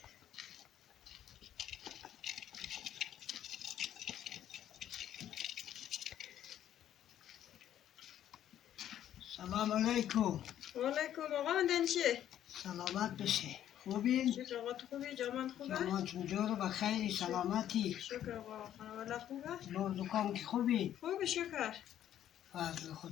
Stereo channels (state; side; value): quieter; right; 11.1 dB